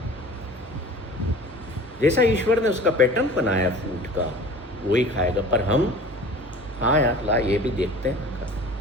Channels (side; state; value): both; normal; correlation 0.42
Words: जैसा ईश्वर ने उसका पैटर्न बनाया फूड का, वो ही खाएगा। पर हम, हाँ यार ला ये भी देखते हैं।